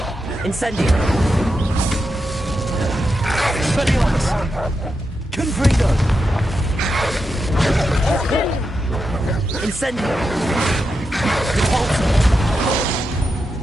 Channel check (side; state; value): both; normal; correlation 0.87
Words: Incendio. Expelliarmus. Confringo. Incendio. Depulso.